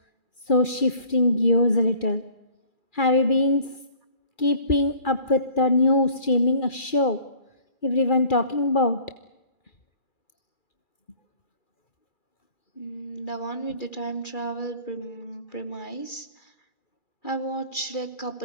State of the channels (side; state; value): right; late; 2.4 ms